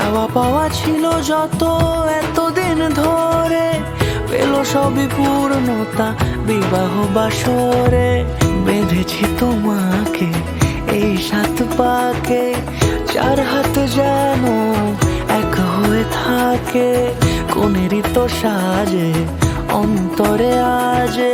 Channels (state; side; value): identical; both; correlation 1.00